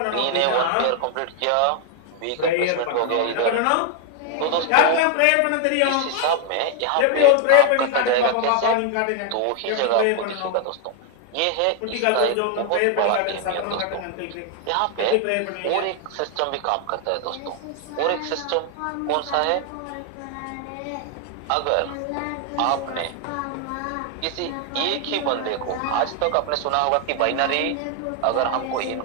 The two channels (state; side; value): different; both; correlation 0.01